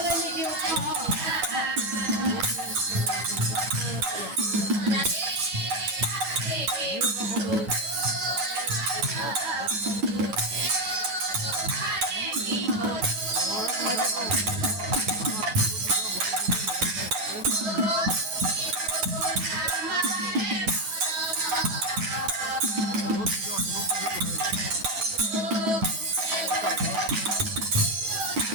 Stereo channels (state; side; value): late; left; 10 ms